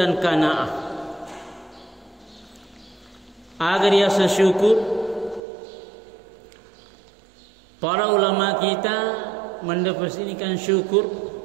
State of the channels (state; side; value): drops out; left; at 5.4 s